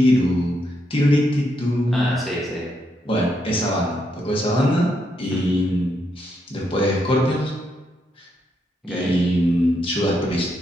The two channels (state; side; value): normal; both; correlation 0.79